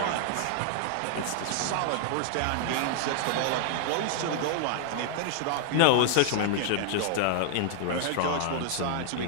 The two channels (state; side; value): different; both; correlation 0.00